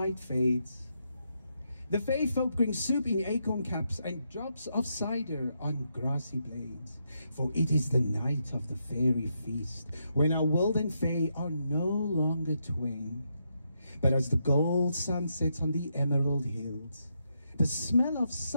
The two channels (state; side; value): inverted; both; correlation -0.81